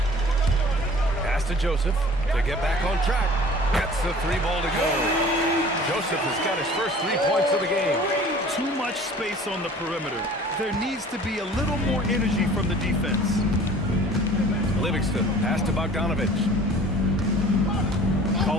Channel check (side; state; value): both; normal; correlation 0.47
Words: Pass to Joseph to get back on track. Gets the three ball to go. Joseph has got his first 3 points of the game. Too much space on the perimeter. There needs to be a little more energy from the defense. Livingston, pass to Bogdanovich.